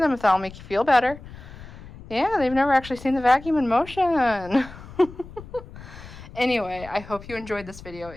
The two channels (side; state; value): left; noise; rumble, 16 dB below the sound